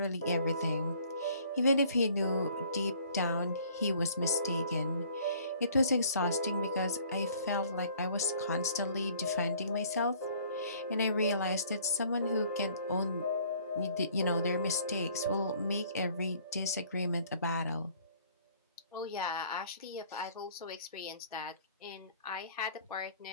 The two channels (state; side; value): inverted; both; correlation -0.57